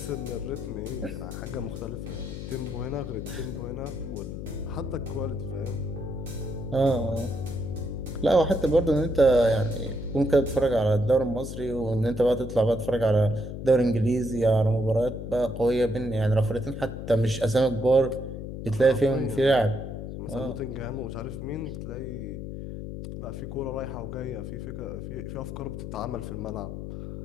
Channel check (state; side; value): noise; left; hum, 7 dB below the sound